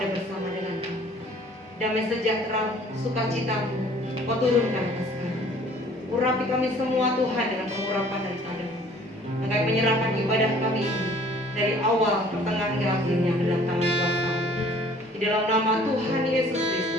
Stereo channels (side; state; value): both; normal; correlation 0.54